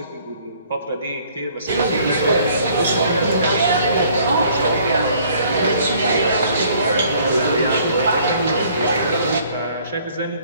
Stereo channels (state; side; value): inverted; both; correlation -0.59